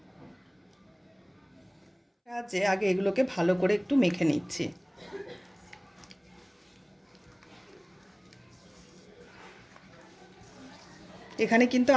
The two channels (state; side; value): identical; both; correlation 1.00